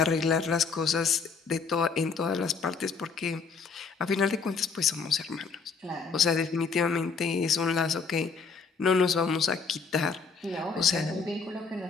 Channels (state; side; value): quieter; right; 5.2 dB